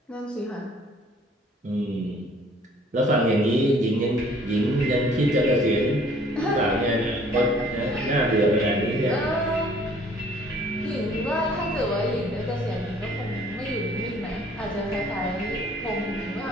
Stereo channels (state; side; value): normal; both; correlation 0.56